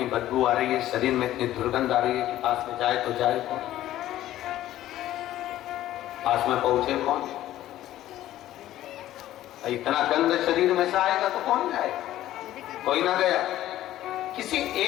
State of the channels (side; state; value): right; quieter; 13.7 dB